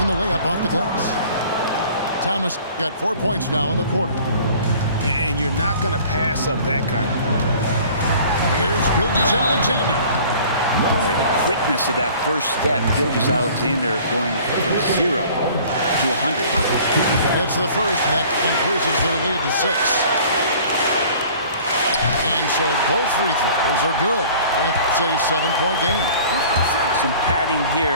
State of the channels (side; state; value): both; inverted; correlation -0.49